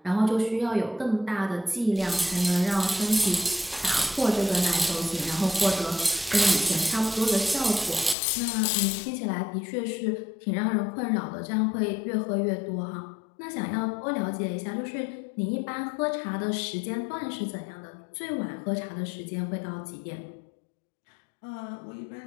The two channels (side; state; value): right; drops out; at 8.2 s